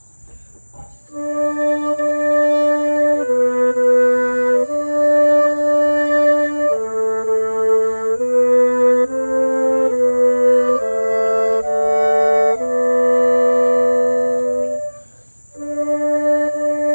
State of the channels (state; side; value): inverted; both; correlation -1.00